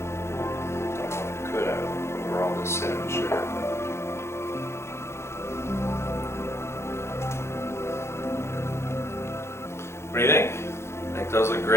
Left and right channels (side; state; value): right; late; 0.13 ms